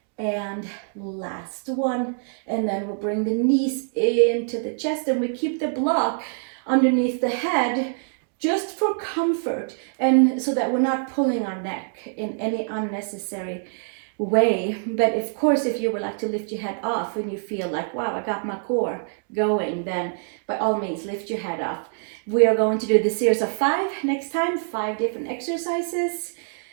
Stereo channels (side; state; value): left; silent; digital silence